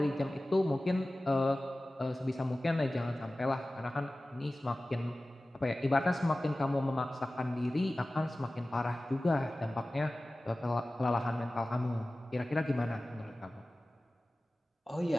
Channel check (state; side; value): normal; both; correlation 0.97